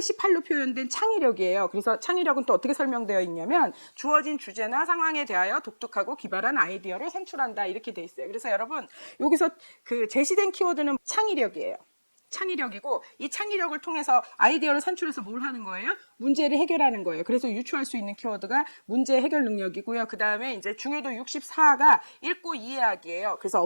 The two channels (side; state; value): both; inverted; correlation -1.00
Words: 표현된 창의력이에요. 그래서 창의력은 또 어떻게 설명되어 있냐면 주어진 주제나 상황에 대하여 독특하고 기발한 아이디어를 산출한다 이렇게 돼 있어요. 그래서 여러분 여기서 그 제시된 키워드는 창의력이에요. 창의력이고 이 창의력을 통해서 아이디어를 산출해서 뭘 하는 거예요? 문제를 해결하는 거예요. 그래서 유추할 수 있는 키워드가 문제 해결 능력이고요. 그 다음에 이제 중요도 64가 읽고 이해하기예요. 그래서